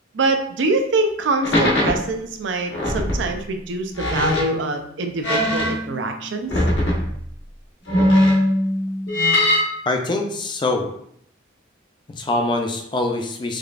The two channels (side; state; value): both; normal; correlation 0.38